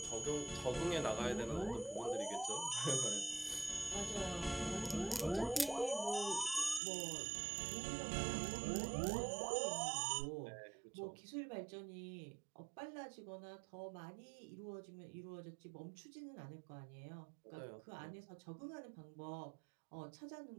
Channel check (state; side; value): drops out; left; at 6.8 s